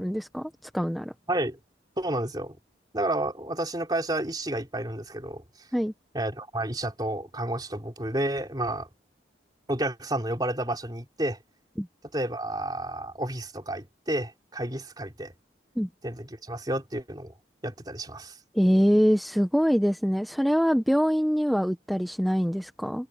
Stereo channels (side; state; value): both; normal; correlation 0.86